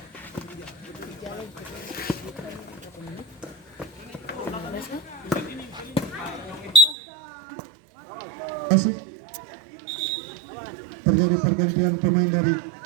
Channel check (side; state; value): left; drops out; at 7.0 s